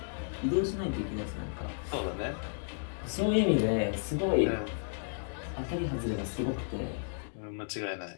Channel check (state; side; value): silent; right; digital silence